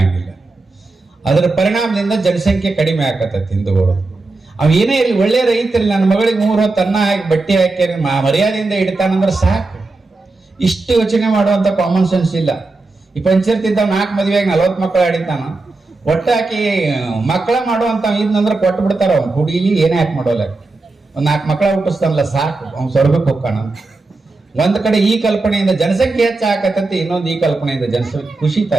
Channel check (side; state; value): left; quieter; 3.4 dB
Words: ಅದರ ಪರಿಣಾಮದಿಂದ ಜನಸಂಖ್ಯೆ ಕಡಿಮೆ ಆಕತ್ತೈತಿ ಹಿಂದೂಗಳು. ಅವ್ ಏನೇ ಇರಲಿ, ಒಳ್ಳೆ ರೈತರಲ್ಲಿ ನನ್ನ ಮಗಳಿಗೆ 3 ಹೊತ್ತು ಅನ್ನ ಹಾಕಿ ಬಟ್ಟೆ ಹಾಕಿ ಮರ್ಯಾದೆಯಿಂದ ಇಡ್ತಾನಂದ್ರೆ ಸಾಕು. ಇಷ್ಟು ಯೋಚನೆ ಮಾಡುವಂತ ಕಾಮನ್ ಸೆನ್ಸ್ ಇಲ್ಲ. ಈ ಪಂಚಾಯತ್ 4 ಮದುವೆಯಾಗಿ 40 ಮಕ್ಕಳು ಆಡಿತಾನ. ಒಟ್ಟಾಕಿ ಮಕ್ಕಳ ಮಾಡುವಂತ ಇದ್ನಂದ್ರೆ ಕೊಟ್ಟು ಬಿಡ್ತಾರ. ಅವ್ನು ಹುಡುಗಿ ಏನೇ ಹಾಕಿ ಮಾಡೋಲ್ಲ, ಒಂದ್ 4 ಮಕ್ಕಳ ಹುಟ್ಟಿಸ್ತಾನಲ್ಲ ಸಾಕು, ಅವ್ನು ಸ್ವರ್ಗಕ್ಕೆ ಹೋಗ್ಕಾನ. ಒಂದ್ ಕಡೆ ಈ ಕಲ್ಪನೆಯಿಂದ ಜನಸಂಖ್ಯೆ ಹೆಚ್ಚಾಕತ್ತೈತಿ, ಇನ್ನೊಂದು ಈ ಕಲ್ಪನೆಯಿಂದ ಜನಸಂಖ್ಯೆ ಕುಸಿತಾ